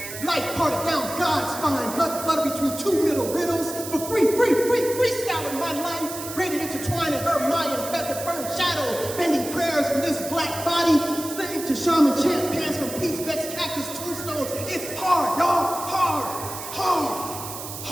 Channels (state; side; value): noise; right; hiss, 9 dB below the sound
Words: Light parted down God's spine, blood flooded between two middle riddles. For freestyling my life. Braided intertwined in her Mayan feather fern shadow. Bending prayers from this black body. Slaying to shaman chant pants from peace vexed cactus tombstones. It's hard, y'all.